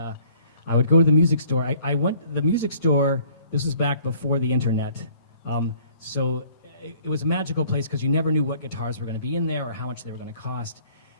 I would go to the music store. I went to the music store. This was back before the internet, so it was a magical place because you never knew what guitars were going to be in there or how much they were going to cost.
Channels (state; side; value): inverted; both; correlation -0.56